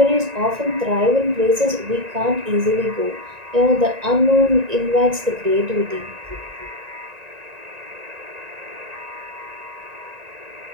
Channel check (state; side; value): late; left; 1.9 ms